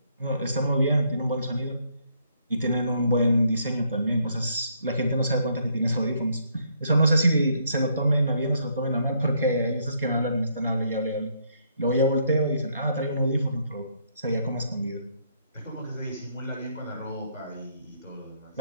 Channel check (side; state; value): both; inverted; correlation -0.71